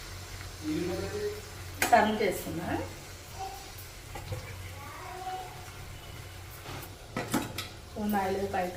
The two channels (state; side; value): identical; both; correlation 1.00